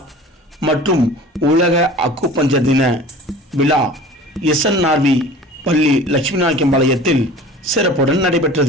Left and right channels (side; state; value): both; normal; correlation 0.42